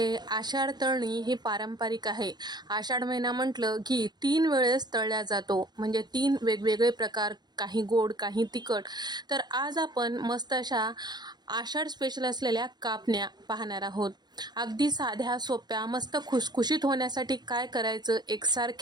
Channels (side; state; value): left; late; 0.20 ms